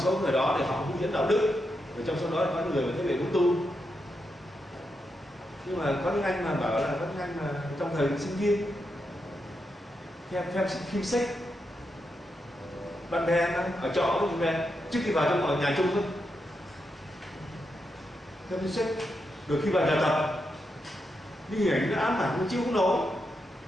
người đó thì họ hướng dẫn đạo đức, rồi trong số đó có người mà thấy về cũng tu. Nhưng mà có những anh mà bảo là có những anh mà trong thời sinh viên theo phim sách, bạn bè ở trọ với bạn bè trước khi vào trong nhà chung thôi, theo phim sách, rồi khi vào nhà tập đi hình ảnh nó ám ảnh nó chịu không nổi.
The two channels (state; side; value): normal; both; correlation 0.85